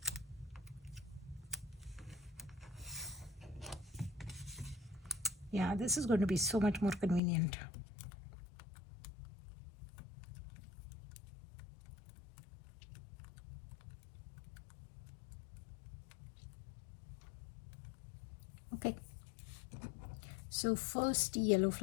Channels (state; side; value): drops out; right; at 7.2 s